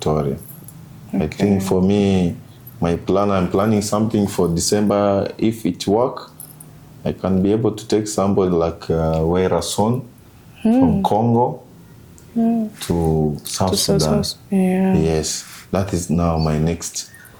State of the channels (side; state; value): both; identical; correlation 1.00